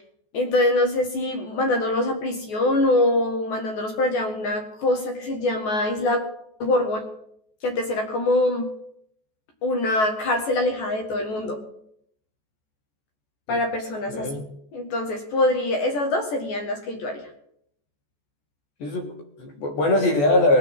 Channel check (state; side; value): late; right; 14 ms